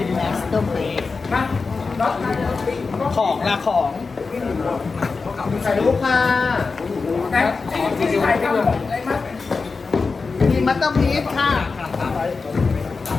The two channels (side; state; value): right; quieter; 4.4 dB